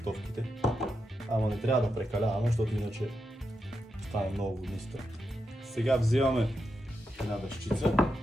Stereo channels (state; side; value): normal; both; correlation 0.86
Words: Ама не трябва да прекаляваме, защото иначе стане много водниста. Сега взимаме една дъщица,